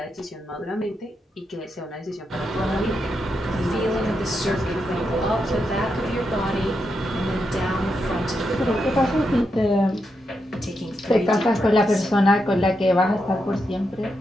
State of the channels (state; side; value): normal; both; correlation 0.84